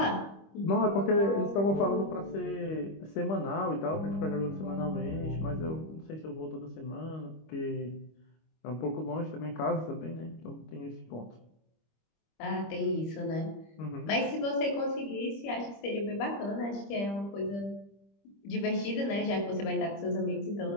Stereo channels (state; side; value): late; right; 25 ms